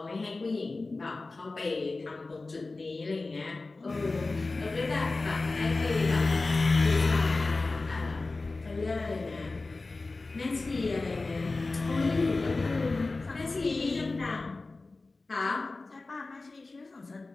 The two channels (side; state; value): right; quieter; 3.5 dB